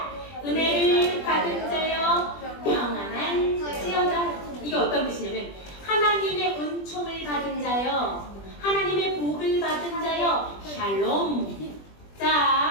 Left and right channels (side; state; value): right; late; 20 ms